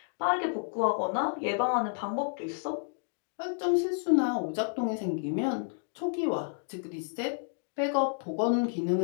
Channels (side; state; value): right; silent; 57 dB below the other